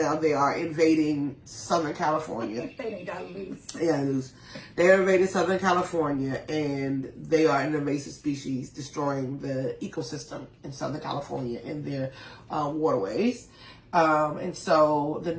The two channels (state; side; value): identical; both; correlation 1.00